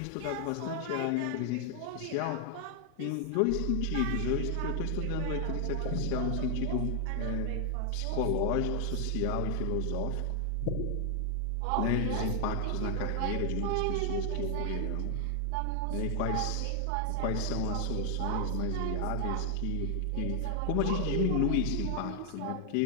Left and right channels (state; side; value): different; both; correlation 0.00